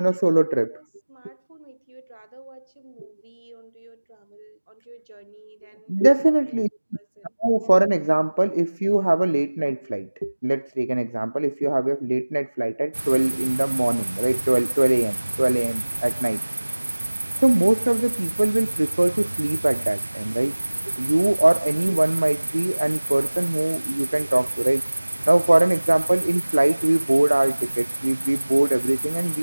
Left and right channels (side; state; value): both; inverted; correlation -1.00